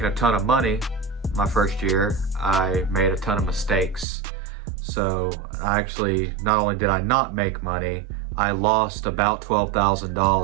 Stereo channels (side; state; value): left; drops out; at 4.0 s